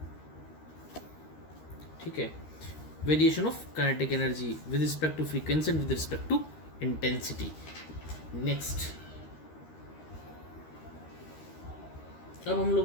ठीक है, variation of kinetic energy with respect to frequency and with respect to intensity. Next, अब हम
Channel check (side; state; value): right; late; 13 ms